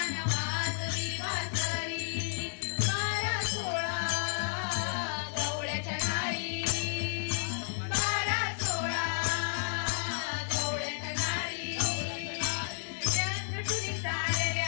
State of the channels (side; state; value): right; silent; digital silence